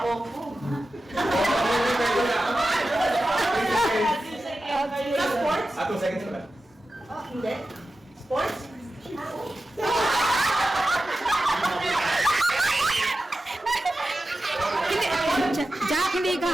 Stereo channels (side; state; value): both; normal; correlation 0.93